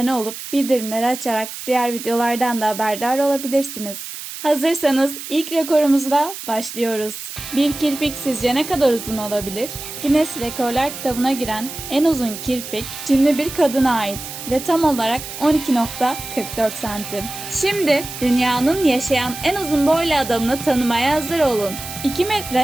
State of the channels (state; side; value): noise; right; hiss, 10 dB below the sound